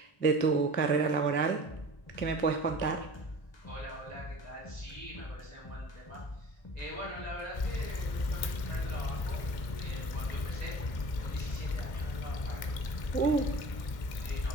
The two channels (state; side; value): late; right; 1.6 ms